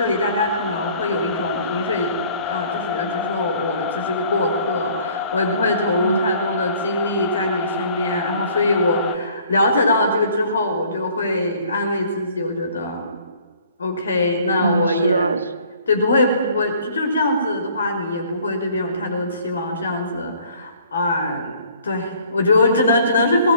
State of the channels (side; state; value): both; inverted; correlation -0.56